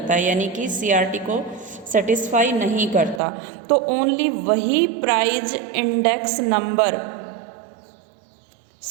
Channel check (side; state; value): left; drops out; at 3.2 s